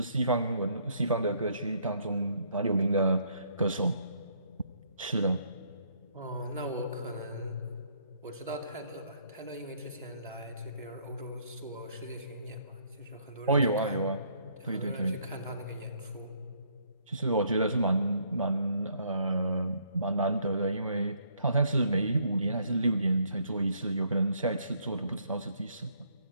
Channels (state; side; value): inverted; both; correlation -0.67